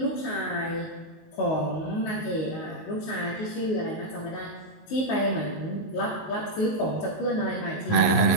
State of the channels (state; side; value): late; right; 19 ms